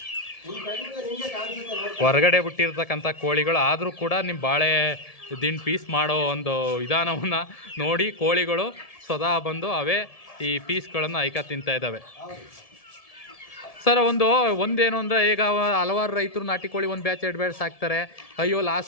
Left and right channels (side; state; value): right; late; 1.7 ms